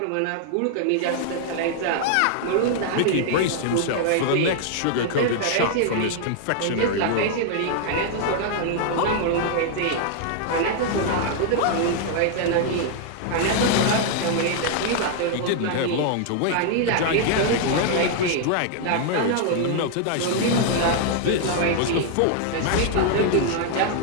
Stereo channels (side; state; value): both; different; correlation 0.00